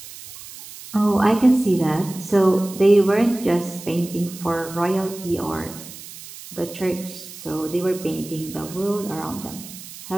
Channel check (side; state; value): right; noise; hiss, 15 dB below the sound